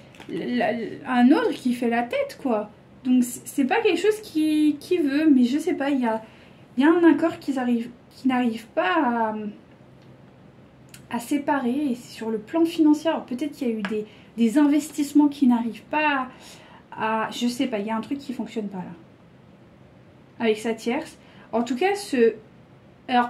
un autre qui fait la tête, quoi. Donc, c'est pas quelque chose qui veut, mais je sais pas, il y a un accord qui n'arrive pas à séparer. Et sur le plan financier, alors peut-être qu'il y a eu des investissements qui n'arrivent pas je sais pas, il y a un truc qui fonctionne pas là avec sa tierce. En tout cas, alors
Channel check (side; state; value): both; identical; correlation 1.00